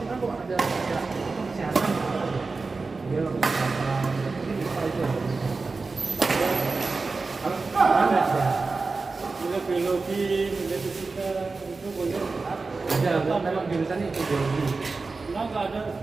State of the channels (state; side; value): quieter; left; 4.0 dB